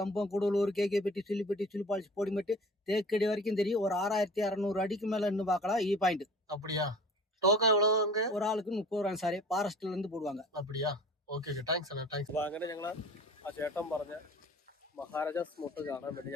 கூடலூர், கேகேபட்டி, சுள்ளிப்பட்டி, சுள்ளிப்பாளைச்சி, போடிமெட்டு, தேக்கடி வரைக்கும் தெரியும். ஒரு 6600 அடிக்கு மேல இருந்து பார்க்கலாம் இ பாயிண்ட். அப்படியா? டோக்கன் எவ்வளவு அங்க? ஒரு ஆளுக்கு 30 ரூபாய் சார், ஃபாரஸ்ட்ல இருந்து போடுவாங்க. அப்படியா? ഓക്കെ താങ്ക്സ് അണ്ണാ, താങ്ക്സ്. അപ്പോൾ അങ്ങനെ ഞങ്ങൾ ആ ചേട്ടൻ പറഞ്ഞ മഹാരാജാസ് മോട്ട് കാണാൻ വേണ്ടി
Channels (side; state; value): both; normal; correlation 0.43